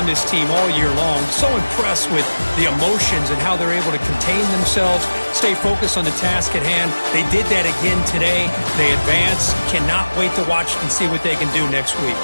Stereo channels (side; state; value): both; inverted; correlation -1.00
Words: this team all year long. So impressed with the emotions and how they're able to contain themselves, stay focused on the task at hand. They did that again today. They advance. Cannot wait to watch and see what they can do next week.